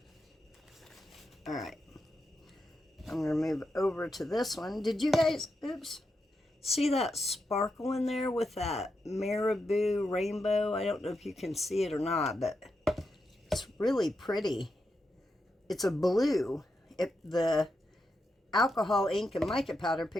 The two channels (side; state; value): both; normal; correlation 0.86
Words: Alright. I'm going to move over to this one. Did you guys, oops, see that sparkle in there with that marabou rainbow? I don't know if you can see it or not, but it's really pretty. It's a blue. The alcohol ink and mica powder